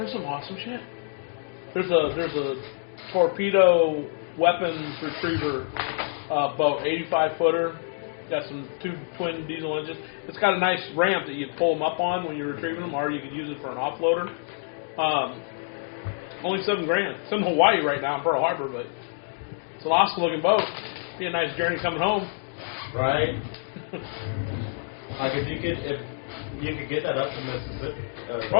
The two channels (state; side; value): silent; right; digital silence